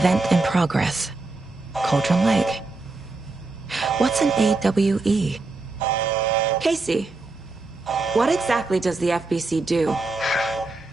in progress. Cauldron Lake. What's an AWE? Casey, what exactly does the FBC do?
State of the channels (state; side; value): quieter; left; 3.4 dB